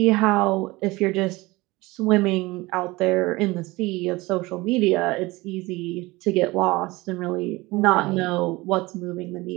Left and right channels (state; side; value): quieter; left; 21.6 dB